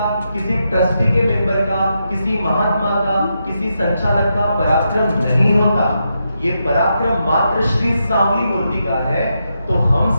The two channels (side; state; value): both; inverted; correlation -0.84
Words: किसी ट्रस्टी के मेंबर का, किसी महात्मा का, किसी संचालक का पराक्रम नहीं होता। ये पराक्रम मात्र श्री सांवली मूर्ति का है। तो हम